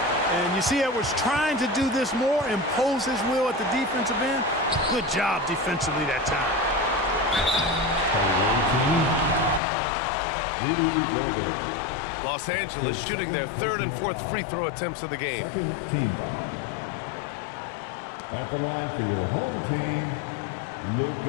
And you see Edwards trying to do this more, impose his will at the defensive end. Good job defensively that time. Los Angeles shooting their 3rd and 4th free throw attempts of the game. Second team foul. At the line for your home team,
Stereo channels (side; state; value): right; drops out; at 9.6 s